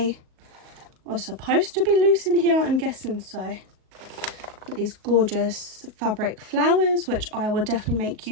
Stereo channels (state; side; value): late; left; 37 ms